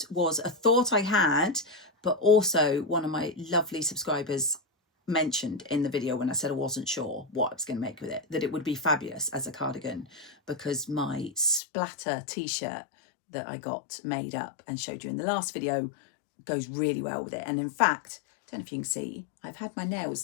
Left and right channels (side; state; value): right; drops out; at 11.6 s